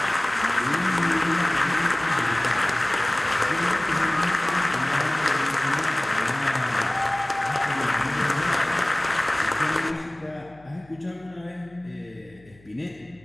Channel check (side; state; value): left; noise; hum, 27 dB below the sound